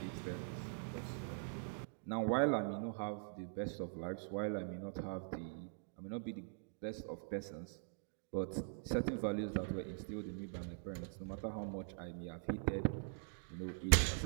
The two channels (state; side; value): silent; left; digital silence